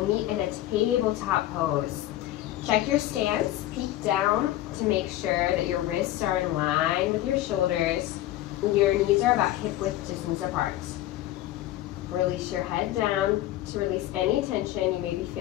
meet in a tabletop pose. Check your stance, peek down to make sure that your wrists are in line with your shoulders. Your knees are about hip width distance apart. Release your head down to release any tension you may be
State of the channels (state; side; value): quieter; right; 14.5 dB